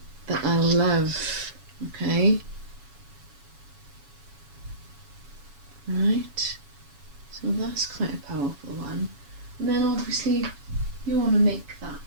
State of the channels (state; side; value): late; left; 7.1 ms